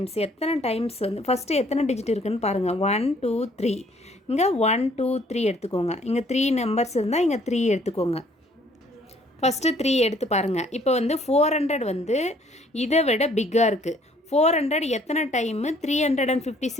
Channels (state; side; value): normal; both; correlation 0.62